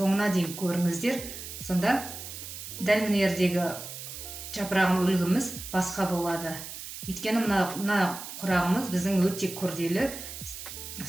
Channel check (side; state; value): right; noise; hiss, 10 dB below the sound